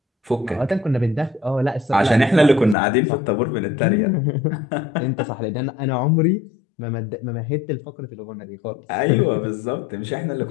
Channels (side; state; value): right; drops out; at 2.8 s